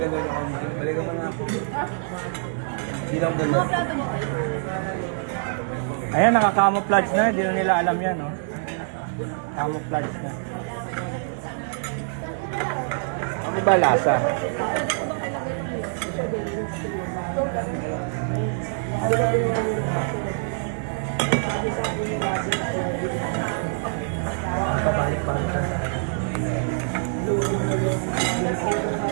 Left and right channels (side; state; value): left; silent; digital silence